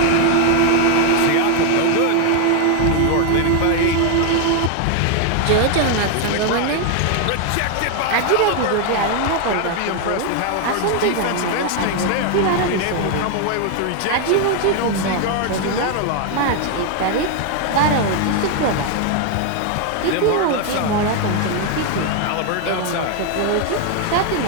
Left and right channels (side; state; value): both; different; correlation 0.01